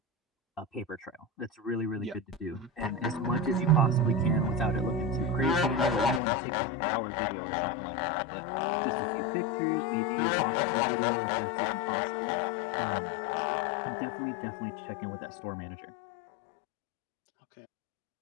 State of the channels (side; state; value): right; drops out; at 6.2 s